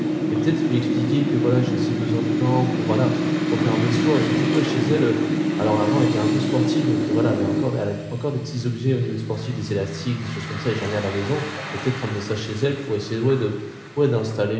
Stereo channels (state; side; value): identical; both; correlation 1.00